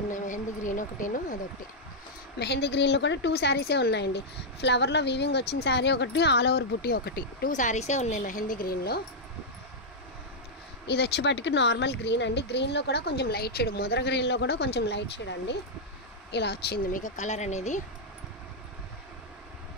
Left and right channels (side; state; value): both; normal; correlation -0.05